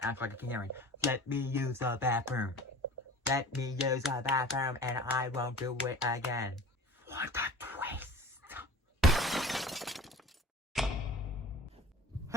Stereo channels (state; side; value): normal; both; correlation 0.41